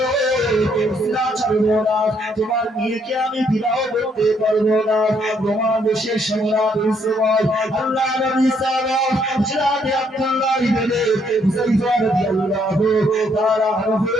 ইসলাম ছাড়ব না, তোমার মেয়েকে আমি বিবাহ করতে পারবো না। রোমান দেশের সম্রাট সময় আল্লাহ নবী সাল্লাল্লাহু আলাইহি আব্দুল্লাহ ইবনে হুযায়ফা রাদিয়াল্লাহু তাআলা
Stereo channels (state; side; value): normal; both; correlation 0.70